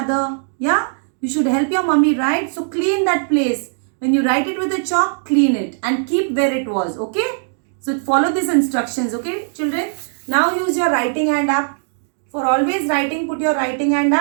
Yeah, you should help your mummy, right? So clean that place. When you write it with a chalk, clean it and keep where it was. Okay, so follow these instructions. Okay children, now use your writing hand up. For always writing, put your writing hand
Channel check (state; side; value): silent; left; digital silence